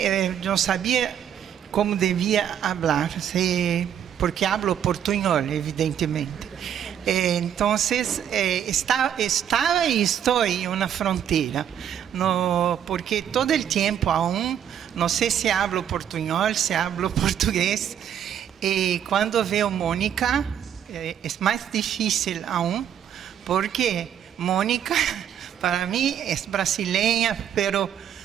yo no sabía cómo debía hablar, porque hablo portuñol, evidentemente. Entonces, estaba y estoy en una frontera, no, porque todo el tiempo aún, no sé si hablo portuñol, si hablo portugués, y cuando veo Mónica, es más difícil aún, porque Mónica, para mí, es brasileña, pero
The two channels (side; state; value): left; quieter; 9.4 dB